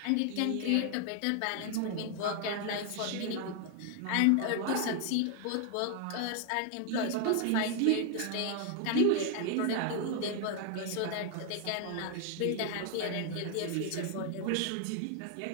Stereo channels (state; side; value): different; both; correlation 0.00